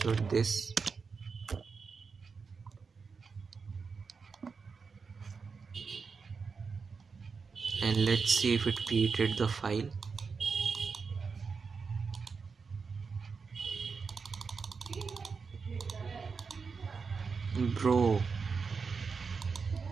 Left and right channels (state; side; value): quieter; left; 5.1 dB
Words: this. And let's see if it created the file. Bro,